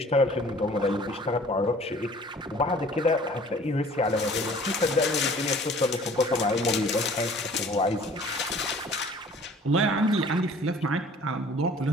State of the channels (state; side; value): normal; both; correlation 0.51